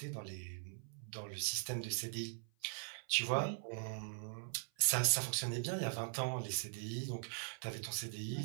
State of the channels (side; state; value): left; silent; 50 dB below the other